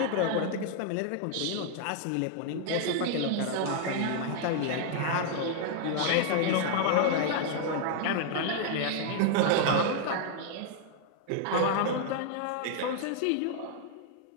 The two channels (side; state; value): both; different; correlation 0.00